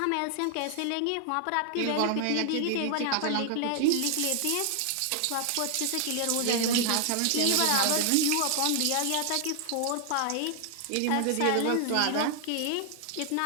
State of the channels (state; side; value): different; both; correlation 0.00